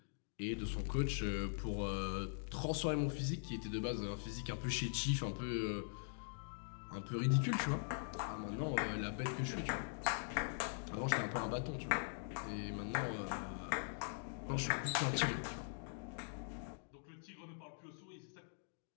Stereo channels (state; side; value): silent; right; digital silence